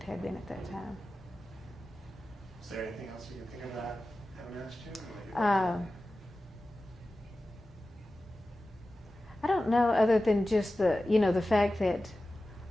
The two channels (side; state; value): both; normal; correlation 0.95